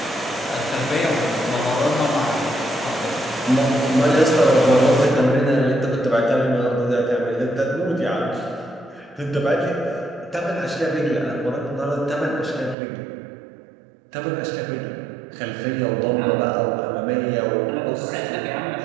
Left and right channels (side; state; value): left; drops out; at 12.8 s